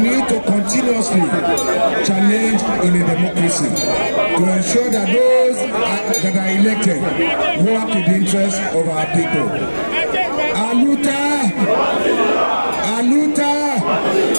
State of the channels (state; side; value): inverted; both; correlation -1.00